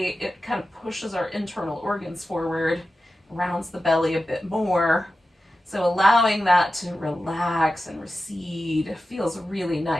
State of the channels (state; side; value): normal; both; correlation 0.93